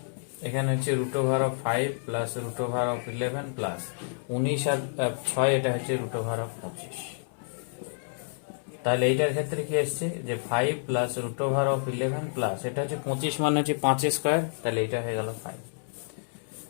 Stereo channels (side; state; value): right; silent; 59 dB below the other